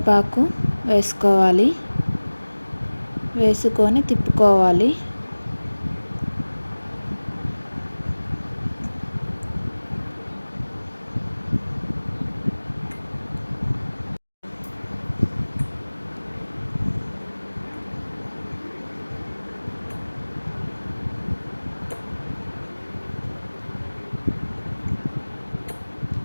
వేసుకోవాలి. వేసుకొని తిప్పుకోవాలి.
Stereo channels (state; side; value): inverted; both; correlation -1.00